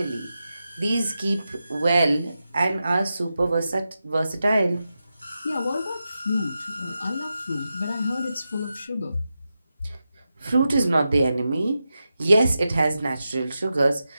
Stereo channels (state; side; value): inverted; both; correlation -0.90